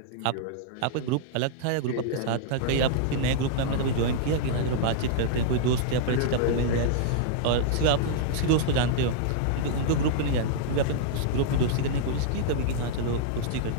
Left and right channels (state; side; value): different; both; correlation -0.02